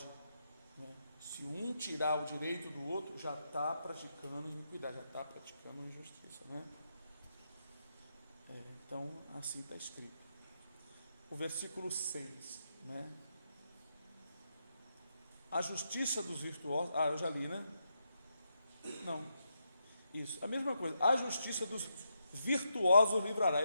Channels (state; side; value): inverted; both; correlation -0.82